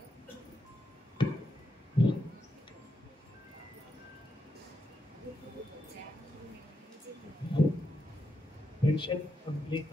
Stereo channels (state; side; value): normal; both; correlation 0.83